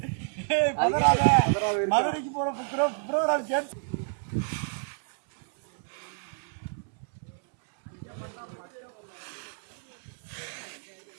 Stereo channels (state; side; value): silent; left; 58 dB below the other